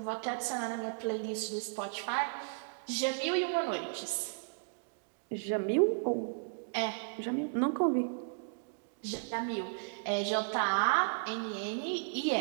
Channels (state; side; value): silent; left; digital silence